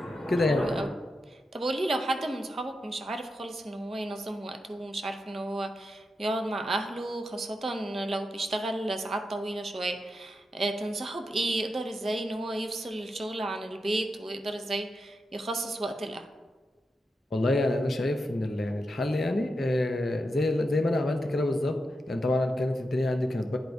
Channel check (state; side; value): normal; both; correlation 0.87